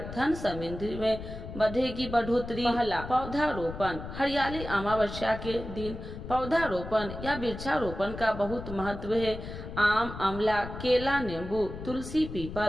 धन समृद्धि में बढ़ेगी बढ़ोतरी। पहला, पौधारोपण। हरियाली अमावस्या के दिन पौधारोपण या वृक्षारोपण का बहुत महत्व है। आम, अमला, केला, नींबू, तुलसी,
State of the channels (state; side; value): noise; left; rumble, 10 dB below the sound